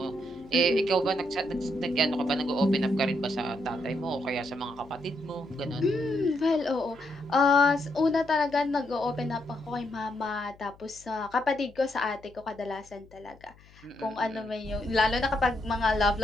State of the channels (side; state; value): left; noise; hum, 26 dB below the sound